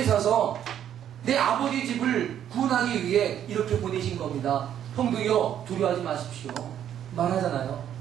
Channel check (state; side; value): quieter; left; 10.1 dB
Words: 내 아버지 집을 구원하기 위해 이렇게 보내신 겁니다. 형들이요 두려워하지 마십시오. 말하잖아요.